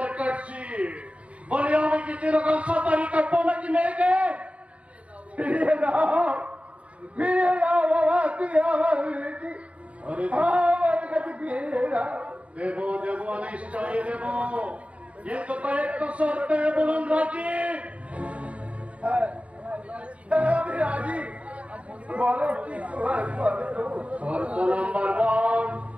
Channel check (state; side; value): late; left; 0.064 ms